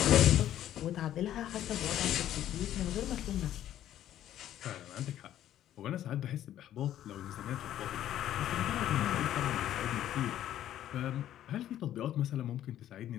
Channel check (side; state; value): right; quieter; 11.9 dB